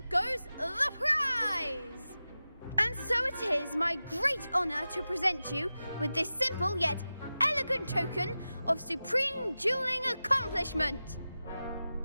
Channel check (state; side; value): inverted; both; correlation -0.94